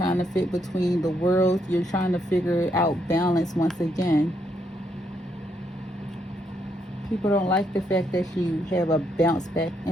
to fit between the worlds. You're trying to figure out balance once again. People don't like the fact that you have a bounce back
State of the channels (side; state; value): both; normal; correlation 0.76